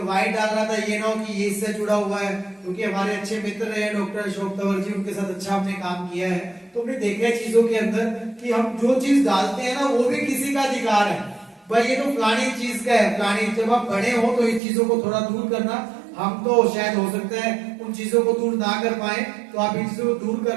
व्हाइट डाल रहा था ये ना कि ये इससे जुड़ा हुआ है, क्योंकि हमारे अच्छे मित्र रहे डॉक्टर अशोक तंवर जी, उनके साथ अच्छा हमने काम किया है। तो हमने देखा है चीजों के अंदर कि हम जो चीज डालते हैं ना वो भी किसी का अधिकार है। भाई ये तो फलानी चीज का है, फलानी। जब आप बड़े हो तो इन चीजों को थोड़ा दूर करना। हम तो शायद हो सकता है उन चीजों को दूर ना कर पाए, तो आप इन चीजों को दूर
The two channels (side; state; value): left; drops out; at 14.6 s